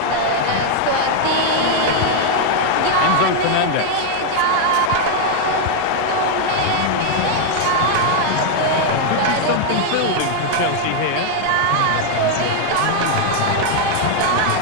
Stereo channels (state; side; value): different; both; correlation 0.00